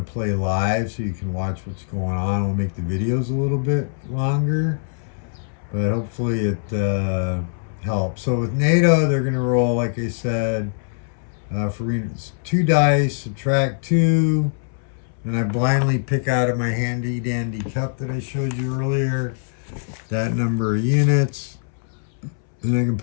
play live so you can watch what's going on. I'll make the videos a little bit longer, but hopefully it helps. So with NATO, they're going to roll, like I said, for 2 dice, subtract 2, and I blindly pick out of my handy dandy cup that I showed you earlier that number of units, and I can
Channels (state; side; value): silent; right; 64 dB below the other